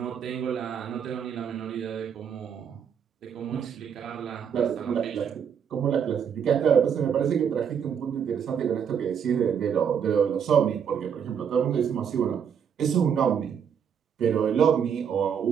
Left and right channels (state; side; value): quieter; left; 7.7 dB